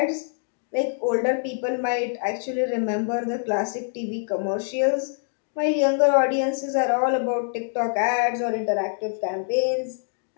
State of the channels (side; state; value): right; silent; 62 dB below the other